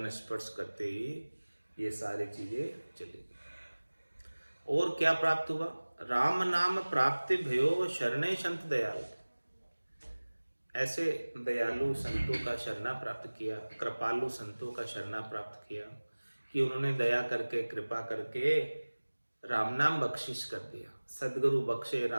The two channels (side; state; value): both; inverted; correlation -1.00